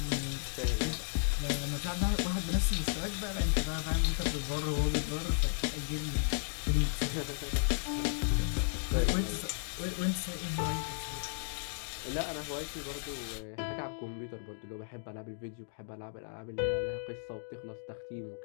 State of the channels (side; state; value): right; silent; digital silence